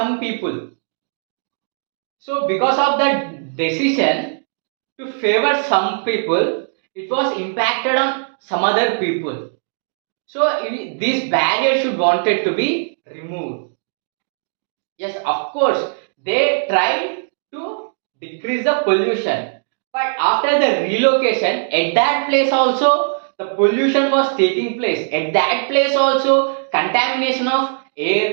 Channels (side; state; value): left; silent; digital silence